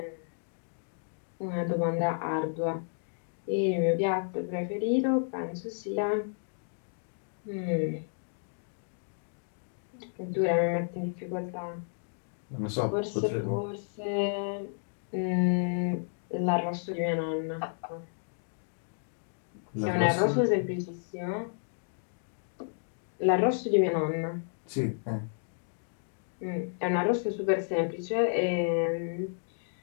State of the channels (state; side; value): silent; right; digital silence